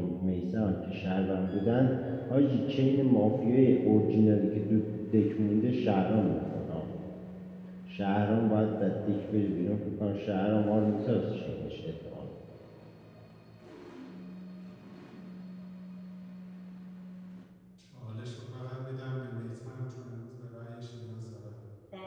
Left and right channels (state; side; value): identical; both; correlation 1.00